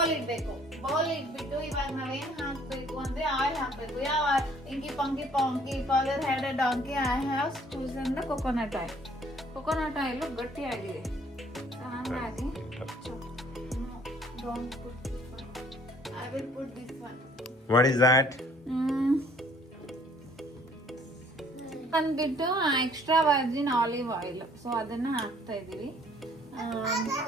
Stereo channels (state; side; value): normal; both; correlation 0.58